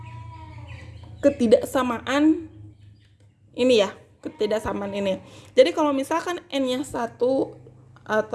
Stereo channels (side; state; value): both; identical; correlation 1.00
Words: ketidaksamaan ini ya, ketidaksamaan ini. Jadi kalau misalkan n-nya 1